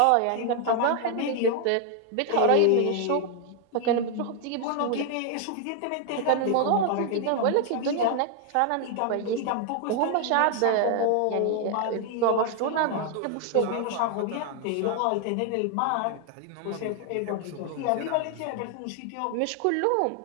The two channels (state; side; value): different; both; correlation 0.00